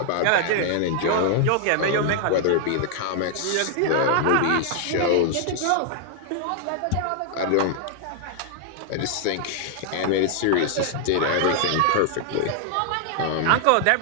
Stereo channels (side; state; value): both; different; correlation 0.00